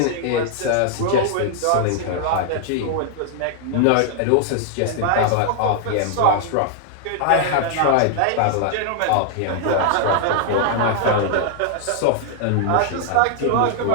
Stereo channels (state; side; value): different; both; correlation 0.00